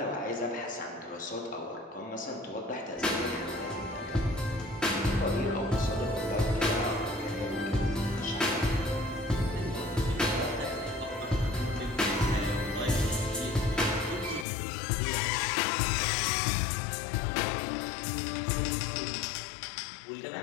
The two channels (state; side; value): drops out; right; at 14.5 s